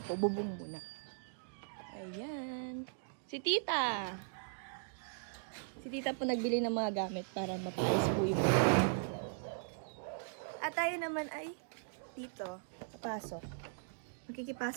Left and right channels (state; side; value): silent; left; digital silence